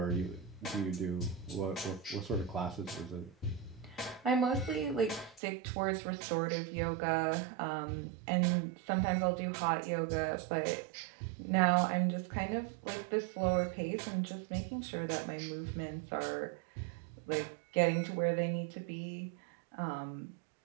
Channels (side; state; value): left; drops out; at 5.4 s